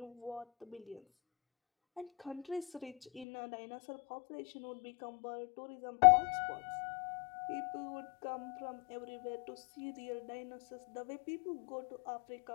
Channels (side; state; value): right; drops out; at 3.2 s